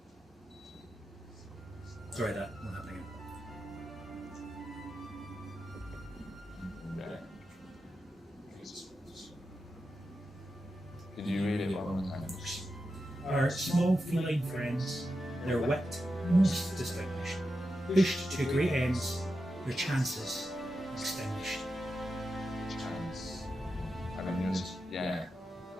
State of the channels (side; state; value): both; normal; correlation 0.89